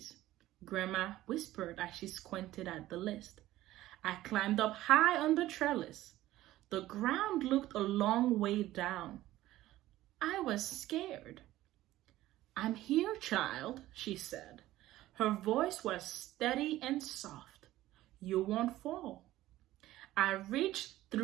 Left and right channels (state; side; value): quieter; left; 15.5 dB